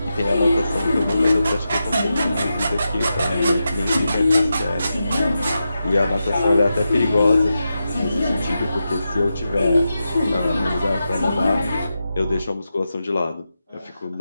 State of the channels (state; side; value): inverted; both; correlation -0.89